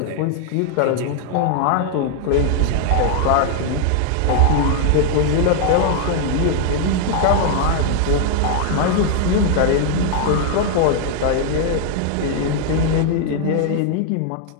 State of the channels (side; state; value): both; different; correlation 0.00